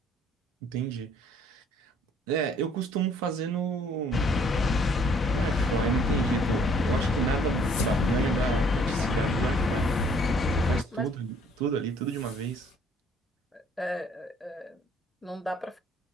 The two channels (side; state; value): both; normal; correlation 0.61